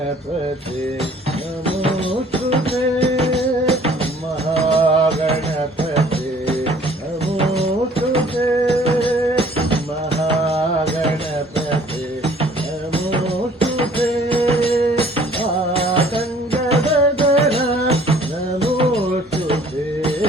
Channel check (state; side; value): normal; both; correlation 0.55